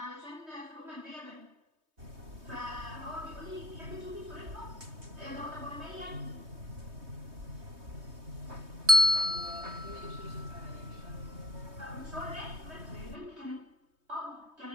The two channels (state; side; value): late; left; 3.2 ms